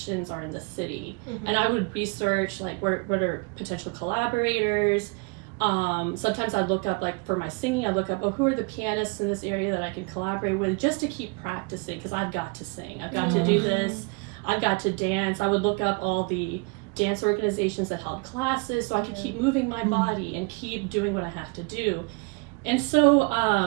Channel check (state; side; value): quieter; left; 30.9 dB